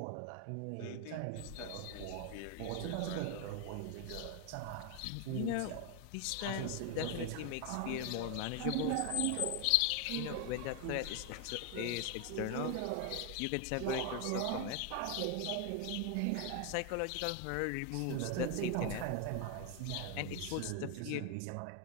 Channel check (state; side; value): different; both; correlation 0.01